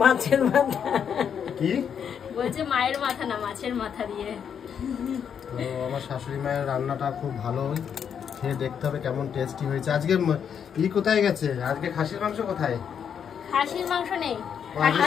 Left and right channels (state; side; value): quieter; right; 7.8 dB